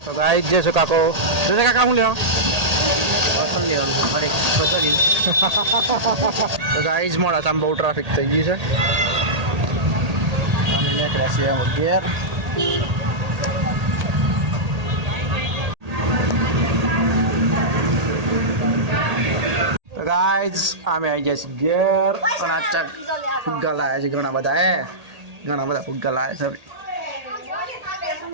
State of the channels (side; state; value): left; late; 1.8 ms